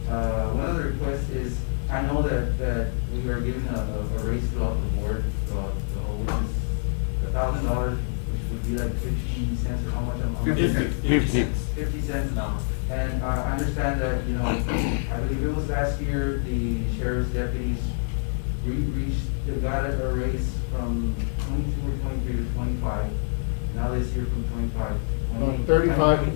One of the requests is, I know that we are giving a raise throughout the board, which is $1,000, which would be like 50 cents, or how much? 50 cents. 50 cents an hour. And I understand that, I believe it was last year, the sheriff's deputies, they got a raise from 22 or 23 to 25. Now this year from 25. 35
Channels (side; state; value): right; silent; digital silence